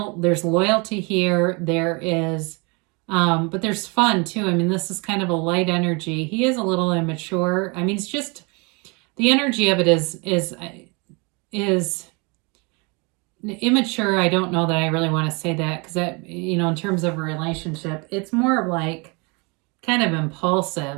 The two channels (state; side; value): quieter; left; 30.2 dB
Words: loyalty here. There is, but there's fun too. I mean, this is kind of a light energy. He is a little immature. I mean, it's just the energy of it is immature. I don't know that I really want to say that, because that, in terms of a relationship, it's more like kind of